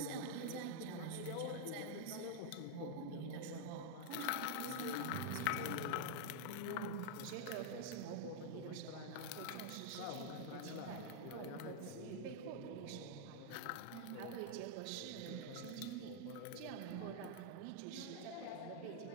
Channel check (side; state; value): both; different; correlation -0.01